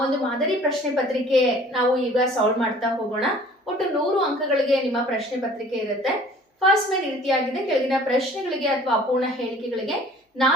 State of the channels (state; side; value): normal; both; correlation 0.51